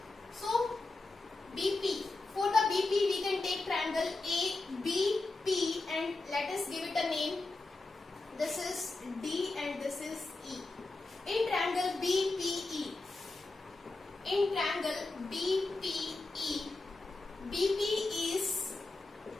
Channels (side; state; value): right; quieter; 3.3 dB